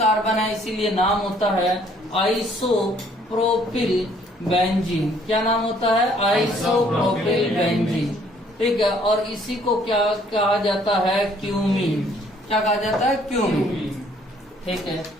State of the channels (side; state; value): both; normal; correlation 0.62